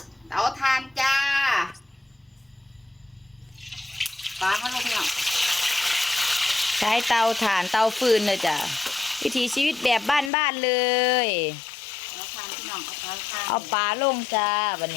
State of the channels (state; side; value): drops out; right; at 10.3 s